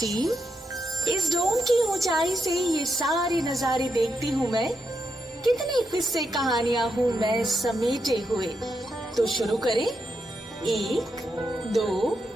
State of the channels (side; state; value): both; normal; correlation 0.83